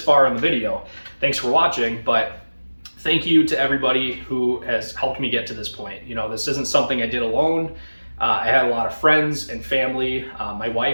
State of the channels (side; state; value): both; inverted; correlation -1.00